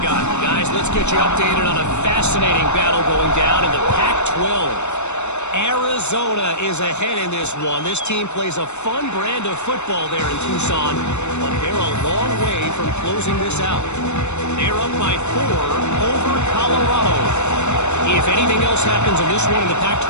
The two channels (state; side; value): late; right; 0.82 ms